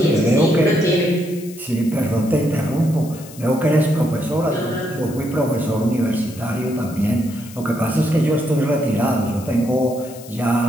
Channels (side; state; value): left; noise; hiss, 19 dB below the sound